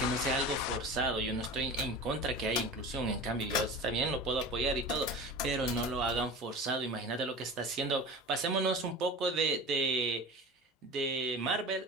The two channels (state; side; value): normal; both; correlation 0.34